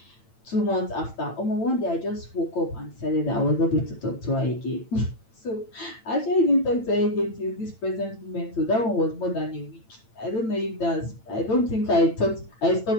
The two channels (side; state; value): right; late; 8.9 ms